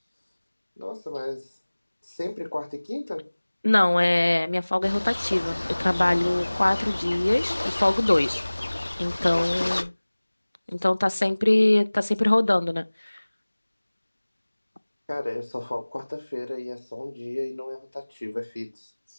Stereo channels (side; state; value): both; inverted; correlation -1.00